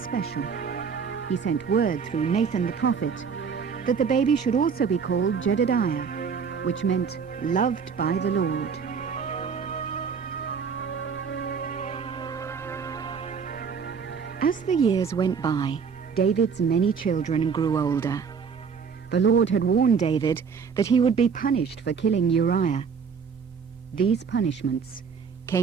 He sent word through Nathan the prophet that the baby should also be called Jedediah, which meant loved by the Lord. As the years went by, David's many children grew older. The Lord had warned David that he would be punished for killing Uriah. These punishments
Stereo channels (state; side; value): quieter; left; 6.1 dB